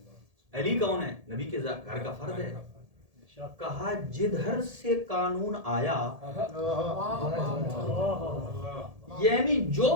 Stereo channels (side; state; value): left; late; 1.7 ms